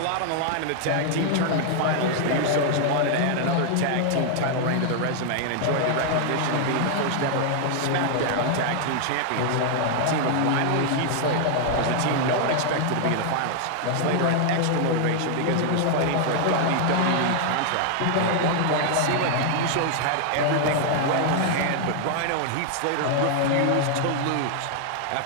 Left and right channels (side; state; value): both; different; correlation 0.00